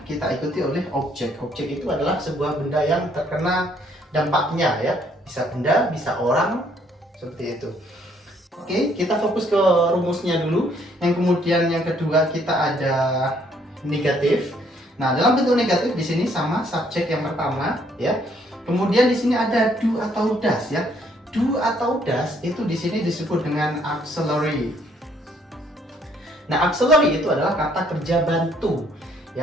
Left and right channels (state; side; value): normal; both; correlation 0.66